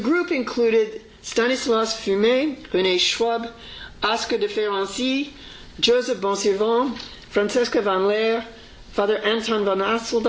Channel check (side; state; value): both; identical; correlation 1.00